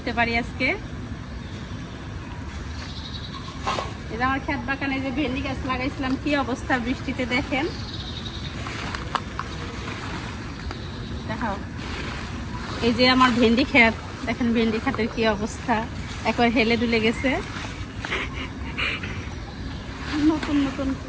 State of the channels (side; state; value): both; identical; correlation 1.00